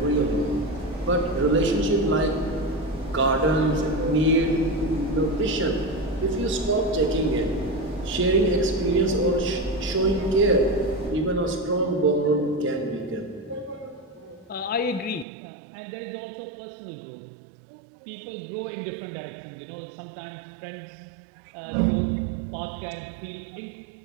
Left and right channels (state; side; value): drops out; left; at 15.2 s